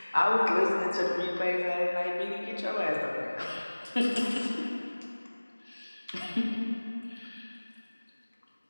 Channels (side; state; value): both; inverted; correlation -1.00